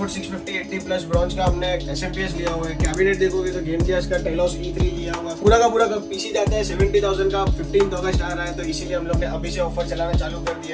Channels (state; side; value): identical; both; correlation 1.00